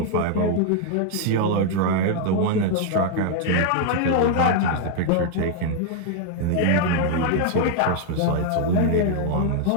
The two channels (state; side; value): different; both; correlation 0.00